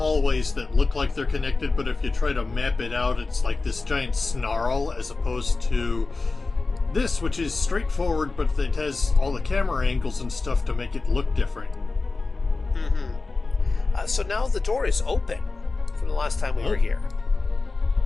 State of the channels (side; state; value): right; quieter; 3.7 dB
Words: that look like they're connected, but if you try to map it out, it's like this giant snarl, as opposed to this, which is straightforward, but it has all the camera angles and stuff to make it look different. Mm-hmm. So now the door is open from the last time we were here.